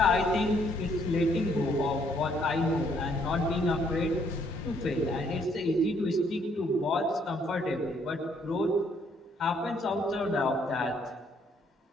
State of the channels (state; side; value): normal; both; correlation 0.68